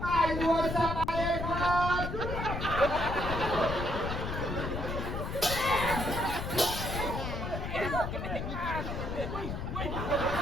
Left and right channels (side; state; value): left; noise; rumble, 4 dB below the sound